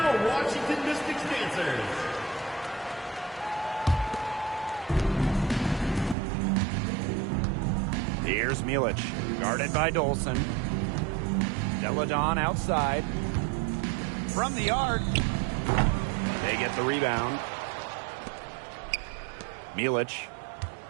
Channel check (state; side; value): drops out; left; at 6.2 s